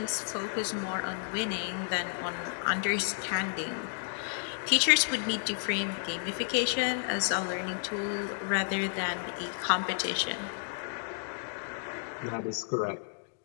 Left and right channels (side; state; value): right; silent; digital silence